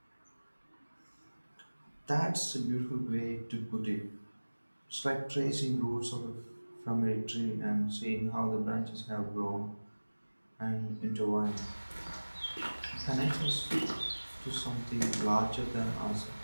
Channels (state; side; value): inverted; both; correlation -1.00